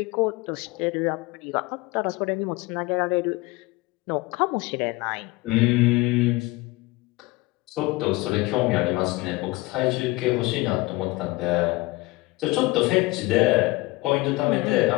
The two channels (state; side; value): quieter; right; 22.0 dB